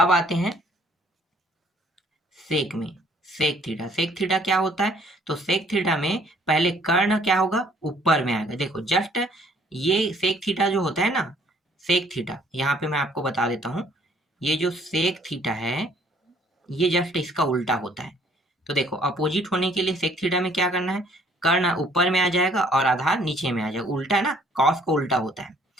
आते हैं सेक में। सेक थीटा क्या होता है? तो सेक थीटा में पहले कर्ण क्या होगा? ऊपर में आएगा। देखो जस्ट ये सेक थीटा जो होता है ना, सेक थीटा यहाँ पे मैं आपको बता देता हूँ। ये जो सेक थीटा है ये जस्ट इसका उल्टा होता है। तो देखो, अपोजिट होने के लिए सेक थीटा में क्या करना है? कर्ण ऊपर में आ जाएगा और आधार नीचे में आ जाएगा। उल्टा ना, कॉस को उल्टा होता है।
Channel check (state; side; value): normal; both; correlation 0.60